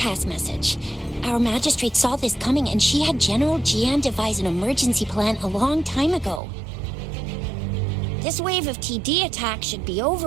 message. Our magistrate saw this coming and she had General Jian devise an emergency plan a long time ago. This wave of TD attacks should be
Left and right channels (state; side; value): drops out; left; at 6.4 s